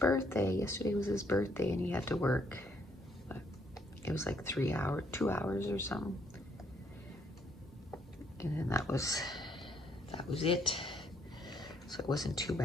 Yesterday was his birthday and he had to work. But it was like 2 hours or something. And then that was it. So it wasn't too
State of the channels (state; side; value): normal; both; correlation 0.69